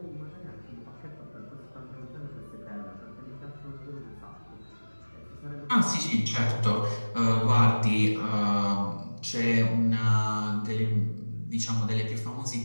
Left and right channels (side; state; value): both; inverted; correlation -1.00